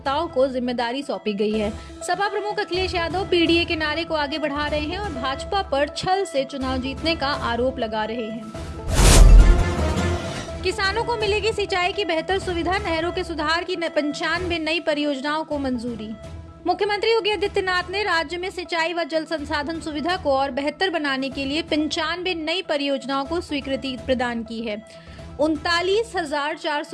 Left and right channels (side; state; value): both; identical; correlation 1.00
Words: को जिम्मेदारी सौंपी गई है। सपा प्रमुख अखिलेश यादव पीडीए के नारे को आगे बढ़ा रहे हैं और भाजपा पर छल से चुनाव जीतने का आरोप लगा रहे हैं। किसानों को मिलेगी सिंचाई की बेहतर सुविधा, नहरों के सुधार की 95 नई परियोजनाओं को मंजूरी। मुख्यमंत्री योगी आदित्यनाथ ने राज्य में सिंचाई व जल संसाधन सुविधा को और बेहतर बनाने के लिए 95 नई परियोजनाओं को स्वीकृति प्रदान की है।